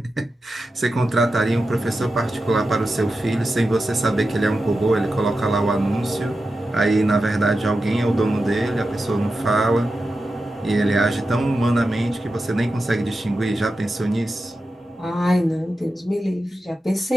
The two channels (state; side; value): normal; both; correlation 0.91